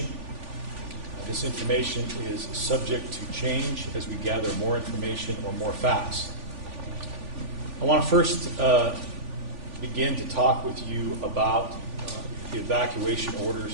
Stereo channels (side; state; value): left; late; 3.5 ms